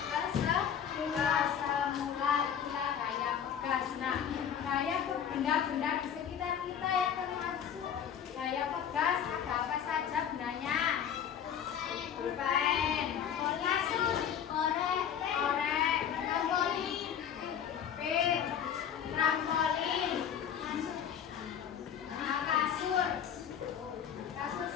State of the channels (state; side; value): quieter; right; 8.6 dB